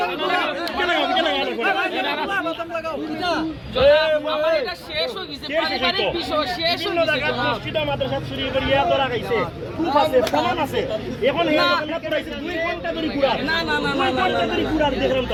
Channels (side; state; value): both; identical; correlation 1.00